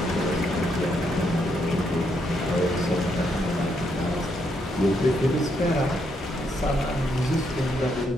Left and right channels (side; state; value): both; normal; correlation 0.76